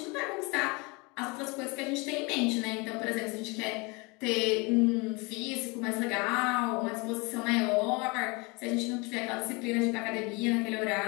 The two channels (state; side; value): quieter; right; 27.8 dB